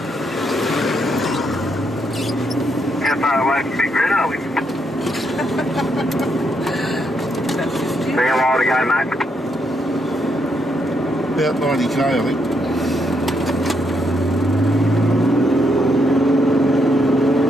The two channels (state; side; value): normal; both; correlation 0.77